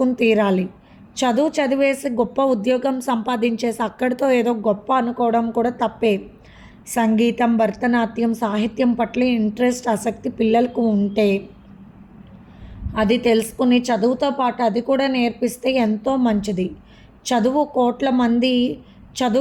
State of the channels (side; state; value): both; identical; correlation 1.00